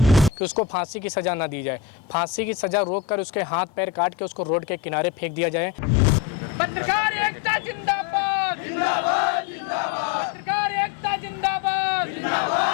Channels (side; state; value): right; drops out; at 5.3 s